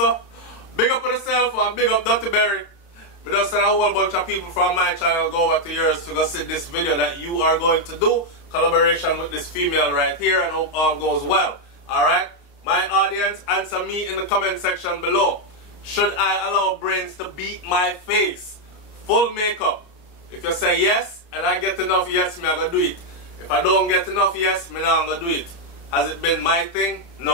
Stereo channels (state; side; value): late; right; 30 ms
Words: Big up on yourself or big up Dr. Berry. We just send a whole bunch of people from my channel go over to yours to go see this video that you are going to do. Collaboration with this female right here, and hope all goes well. Alright? My audience, answer me in the comment section below. Should I allow Brains to beat my face? Full makeup. If you say yes, and I get enough yes, me I go do it. If I don't get enough yes, me not gonna do it. Has it been my thing?